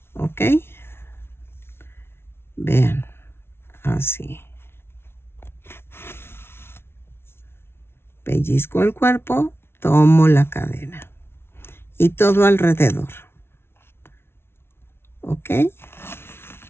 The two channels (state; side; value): late; right; 0.12 ms